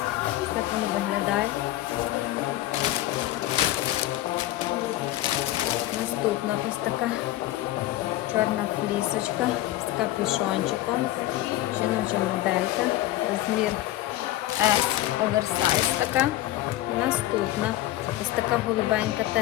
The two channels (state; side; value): quieter; right; 15.3 dB